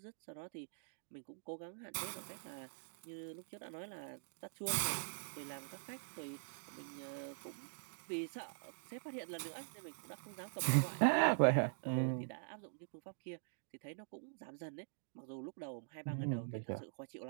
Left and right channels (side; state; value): left; silent; digital silence